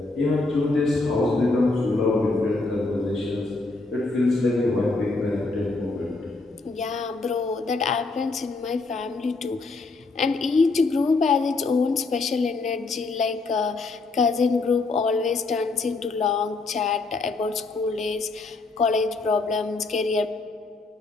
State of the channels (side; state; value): right; quieter; 3.6 dB